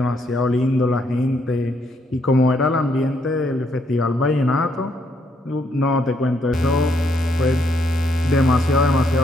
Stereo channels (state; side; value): normal; both; correlation 0.73